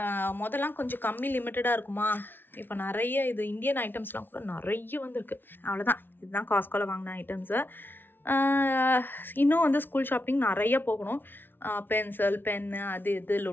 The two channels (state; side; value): late; right; 0.099 ms